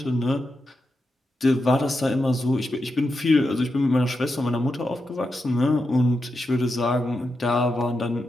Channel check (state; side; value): normal; both; correlation 0.87